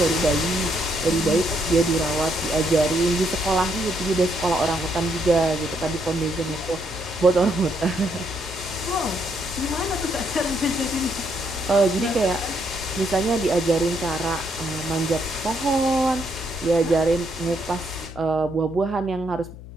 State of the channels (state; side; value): noise; left; hum, 15 dB below the sound